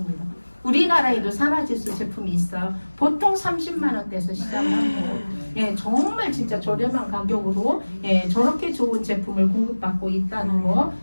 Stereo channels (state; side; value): inverted; both; correlation -1.00